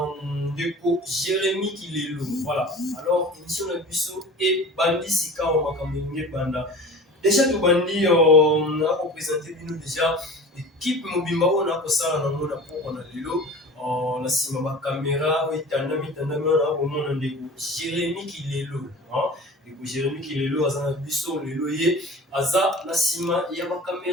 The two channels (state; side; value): normal; both; correlation 0.38